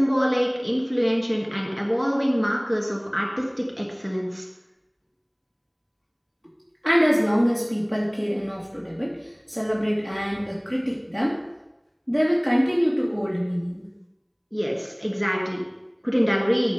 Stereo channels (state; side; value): identical; both; correlation 1.00